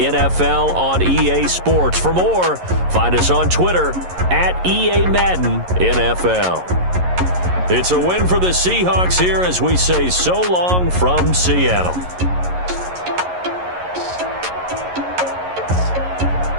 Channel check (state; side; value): late; left; 11 ms